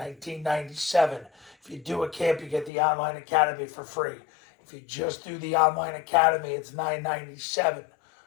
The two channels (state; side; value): drops out; right; at 2.7 s